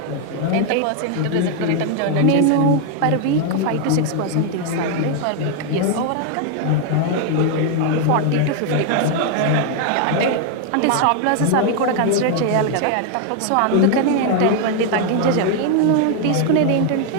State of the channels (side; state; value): both; different; correlation 0.00